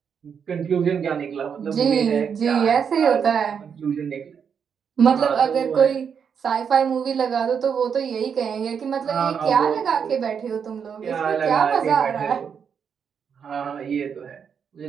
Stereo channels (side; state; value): left; quieter; 7.0 dB